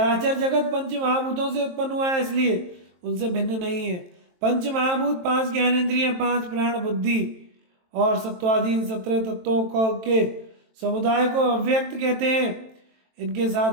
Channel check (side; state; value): left; late; 23 ms